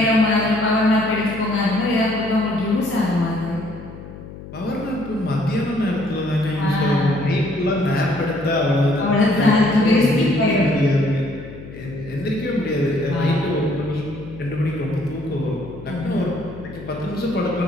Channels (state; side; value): noise; left; hum, 14 dB below the sound